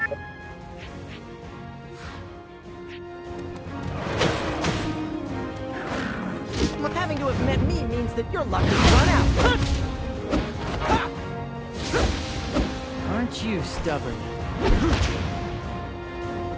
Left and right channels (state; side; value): identical; both; correlation 1.00